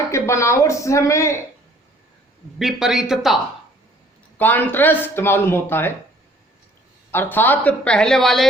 के बनावट से हमें विपरीतता, कॉन्ट्रास्ट मालूम होता है। अर्थात पहले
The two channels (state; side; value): normal; both; correlation 0.57